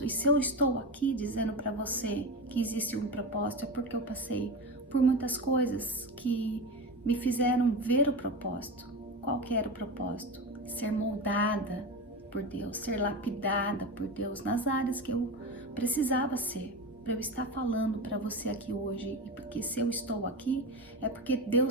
E se eu estou aqui dizendo para você que existe um propósito, é porque eu passei por muitas coisas que me fizeram ver o propósito. Qual que era o propósito? Ser moldada por Deus, ser lapidada por Deus nas áreas que eu precisava ser. para eu estar falando para você aqui hoje, e porque se eu estou aqui, é porque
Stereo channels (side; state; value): both; normal; correlation 0.22